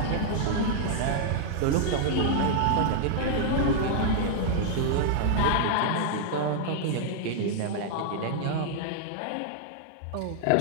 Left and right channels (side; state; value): both; different; correlation -0.01